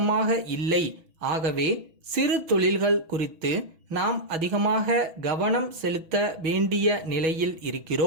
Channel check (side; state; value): left; late; 6.2 ms